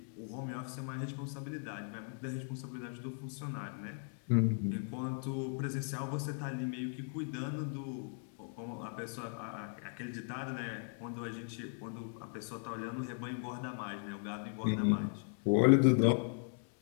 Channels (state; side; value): silent; right; 53 dB below the other